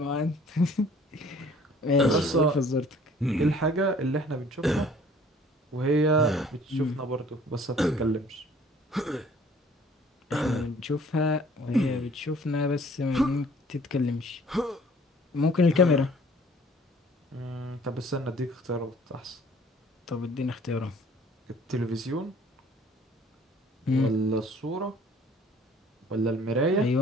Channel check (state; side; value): normal; both; correlation 0.55